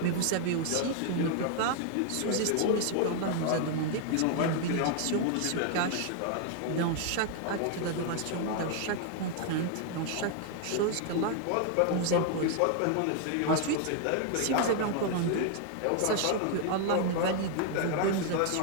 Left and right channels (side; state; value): both; different; correlation 0.00